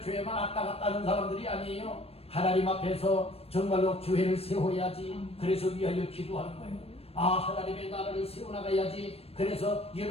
왔다 갔다 하는 사람들이 아니에요. 하나님 앞에서 정말로 교회를 세워야지, 그래서 위하여 기도하는 거예요. 하나님의 나라를 세워나가야지, 그래서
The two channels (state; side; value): late; right; 0.28 ms